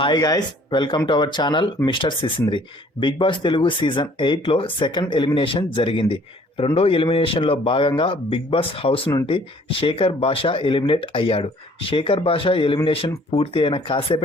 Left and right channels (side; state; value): both; normal; correlation 0.57